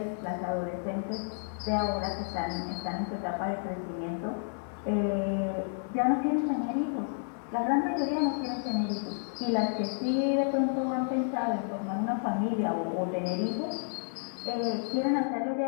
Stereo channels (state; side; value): silent; right; 57 dB below the other